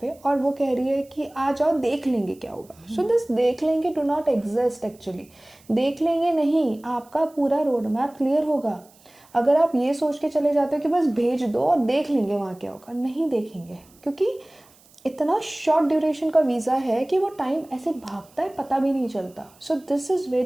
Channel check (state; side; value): noise; right; hiss, 29 dB below the sound